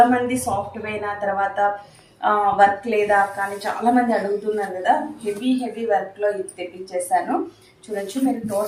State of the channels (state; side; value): identical; both; correlation 1.00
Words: సాఫ్ట్వేర్ తర్వాత వర్క్ లేదా కానీ చాలా మంది అడుగుతున్నారు కదా, హెవీ వర్క్లో ఇది తెప్పించేసాను. చూడొచ్చు మీరు.